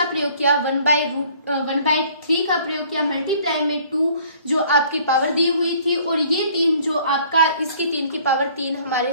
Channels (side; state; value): both; inverted; correlation -0.56